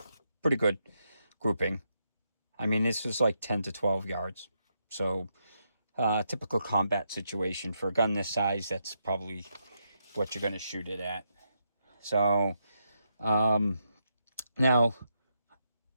pretty good grouping. I mean, this was like 10 to 12 yards. So, typical combat situation for a gun this size. That's probably what you're going to shoot it at. So, now,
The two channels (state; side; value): inverted; both; correlation -0.81